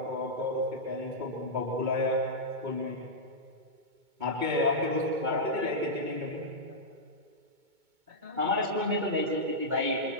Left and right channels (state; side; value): late; left; 2.2 ms